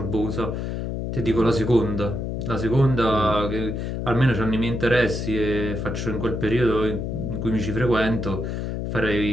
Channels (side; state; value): left; noise; hum, 3 dB below the sound